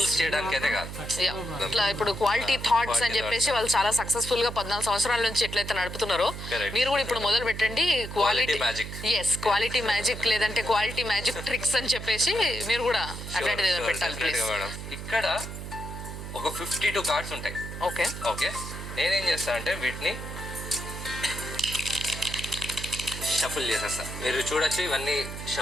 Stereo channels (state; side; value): noise; right; hum, 8 dB below the sound